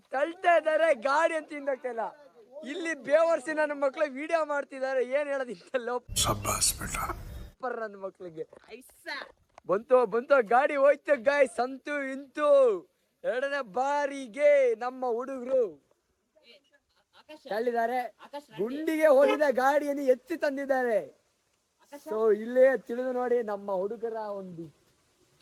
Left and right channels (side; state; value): both; identical; correlation 1.00